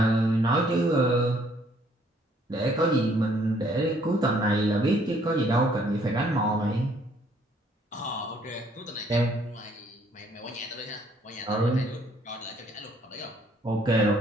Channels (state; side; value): normal; both; correlation 0.64